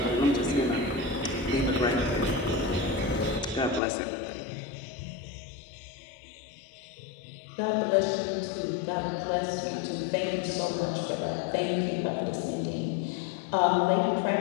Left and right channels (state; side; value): drops out; right; at 3.8 s